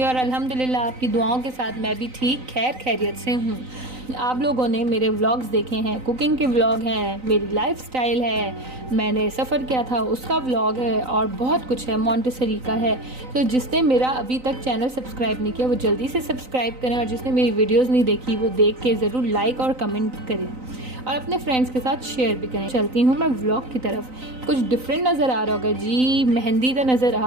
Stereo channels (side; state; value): left; late; 3.9 ms